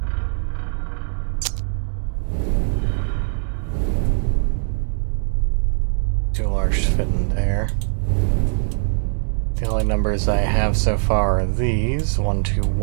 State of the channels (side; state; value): left; silent; 65 dB below the other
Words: Too large to fit in there. The only numbers I have so far are these. 1, 2,